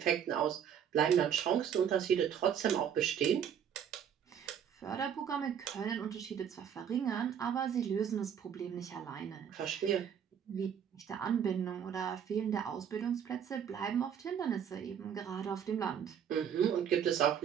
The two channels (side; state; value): left; quieter; 8.5 dB